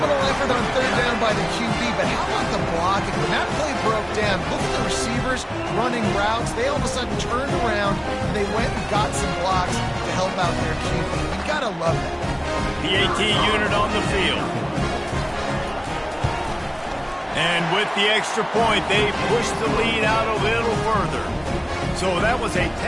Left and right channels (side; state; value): both; identical; correlation 1.00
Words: effort on third down by the QB, but how about the blocking? When that play broke down, look at the receivers running routes. They all of a sudden turned around, and they went and got some blocks to help out their QB. You gotta love that. PAT unit on the field. And with the extra point, they pushed the lead out a little further. So that was a